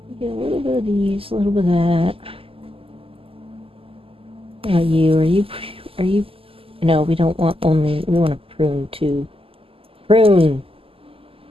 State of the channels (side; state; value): left; late; 0.26 ms